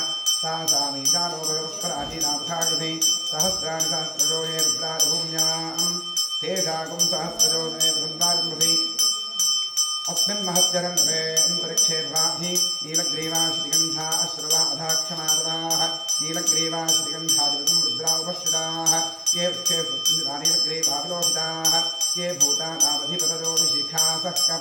सा सामीशानो भगवत्पराजीनामथाकृति सहस्राणि सहस्रजो ये रुद्रादिभूम्यां तेषाकुं सहस्रजो नेतुन्वारिमृति अस्मिन् महत्यरन्त्रे अन्तरिक्षे वाधि नीलग्रीवाश्रिगन्धा अश्रवा अधाक्षमादराः नीलग्रीवाश्रिगन्धादिवं रुद्रा उपश्रिताः ये वृक्षे सुन्दरा नीलग्रीवाविलोहिताः ये भूतानावधिपतयो विशिखासः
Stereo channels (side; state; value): both; identical; correlation 1.00